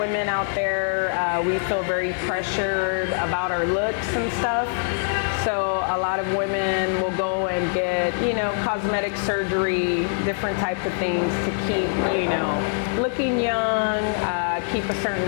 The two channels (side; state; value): right; silent; digital silence